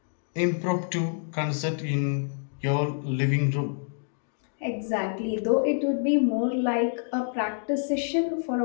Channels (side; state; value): right; silent; digital silence